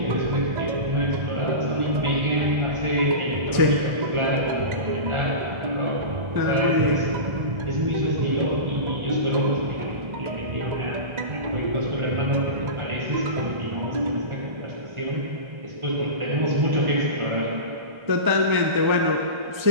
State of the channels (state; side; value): late; left; 1.4 ms